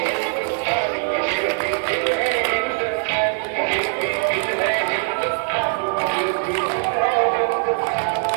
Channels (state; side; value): silent; left; 63 dB below the other